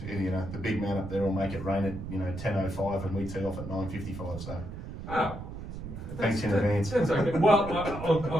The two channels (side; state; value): right; noise; rumble, 9 dB below the sound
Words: the big man up there will make it rain at 10:05 and we tee off at 9:55, so. Oh. Thanks in advance. That's okay.